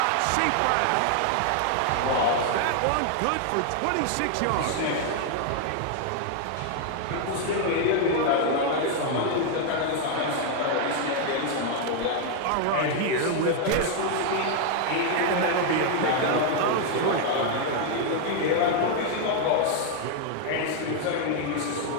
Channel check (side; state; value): both; different; correlation 0.00